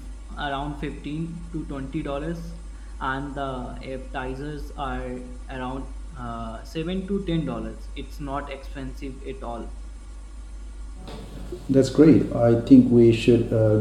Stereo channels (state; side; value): identical; both; correlation 1.00